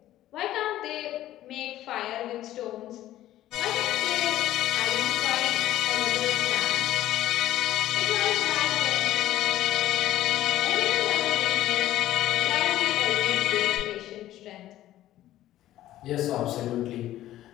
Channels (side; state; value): right; quieter; 13.8 dB